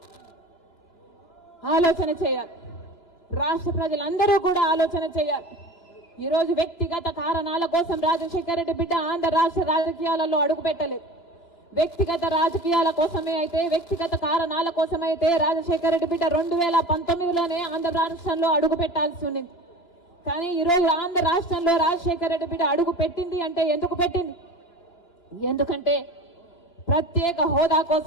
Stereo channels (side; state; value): right; late; 2.9 ms